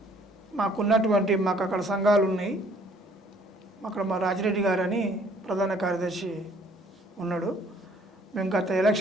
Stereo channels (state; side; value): normal; both; correlation 0.60